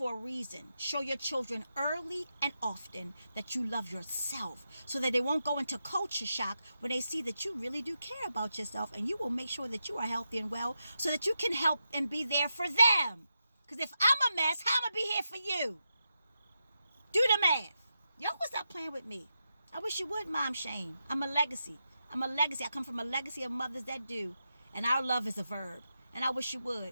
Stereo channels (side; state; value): both; inverted; correlation -0.87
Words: a reason. Show your children early and often that you love yourself so that they won't go into culture shock when they see that you really do care about yourself, and you will make sure that you are healthy and well so that you can help and be there for them. Because if I'm a mess, how am I going to be here for you? Do the math. Y'all will stop playing with me. I wish you would mom shame. I'm a legacy. I come from a legacy of mothers that do. And our love is a verb. And I wish you